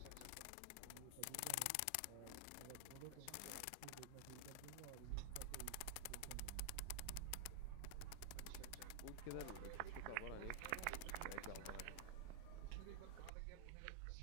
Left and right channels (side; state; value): both; different; correlation 0.00